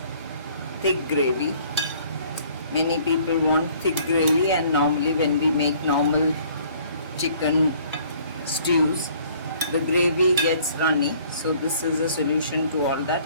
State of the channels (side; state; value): both; inverted; correlation -0.57